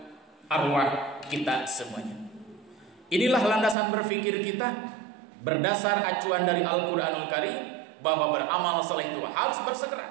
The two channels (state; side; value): drops out; left; at 3.8 s